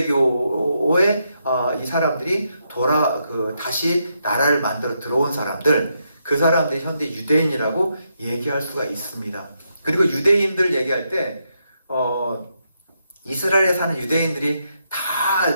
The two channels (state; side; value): inverted; both; correlation -0.80